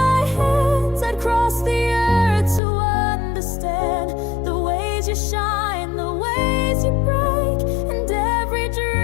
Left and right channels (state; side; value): drops out; right; at 2.6 s